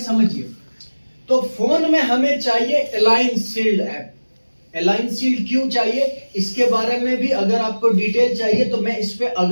समझिए, तो फोन में हमें चाहिए align shield app. Align shield क्यों चाहिए इसके बारे में भी अगर आपको डिटेल चाहिए तो मैं इस पे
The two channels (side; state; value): both; inverted; correlation -1.00